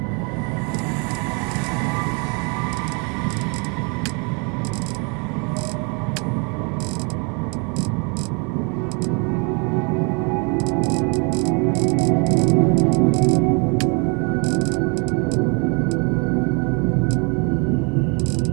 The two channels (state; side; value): quieter; left; 33.6 dB